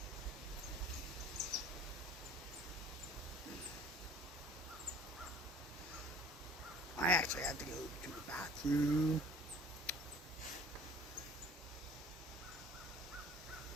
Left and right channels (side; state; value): both; normal; correlation 0.48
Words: I actually have to go to the bathroom.